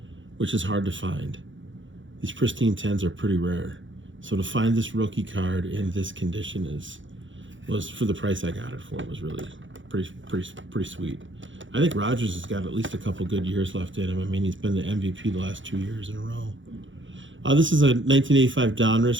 which is hard to find. These pristine 10s are pretty rare. So to find this rookie card in this condition was for the price I got it for, was really pretty sweet. I think Rodgers has got at least a couple good years left in him. I mean, he's been the MVP the last 2 years in a row. This is a 1985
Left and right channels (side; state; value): left; late; 0.56 ms